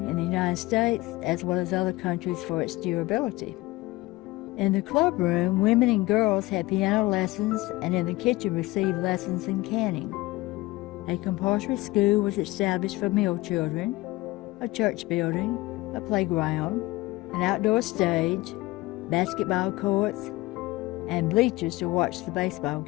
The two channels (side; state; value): right; quieter; 20.2 dB